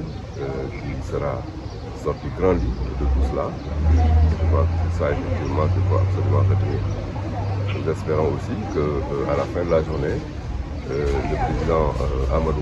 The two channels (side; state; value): both; identical; correlation 1.00